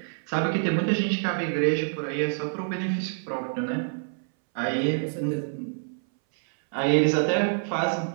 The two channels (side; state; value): left; silent; 60 dB below the other